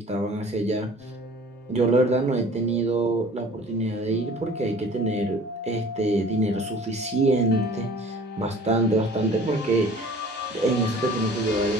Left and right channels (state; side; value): normal; both; correlation 0.47